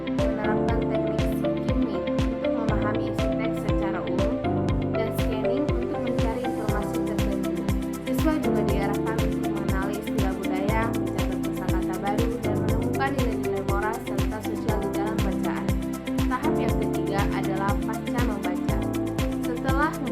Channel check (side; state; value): both; identical; correlation 1.00